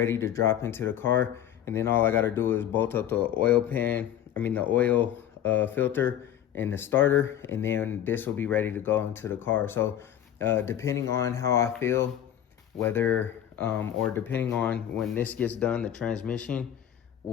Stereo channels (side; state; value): right; quieter; 10.7 dB